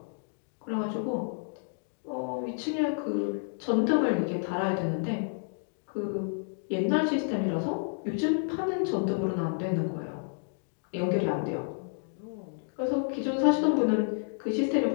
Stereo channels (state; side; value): silent; right; digital silence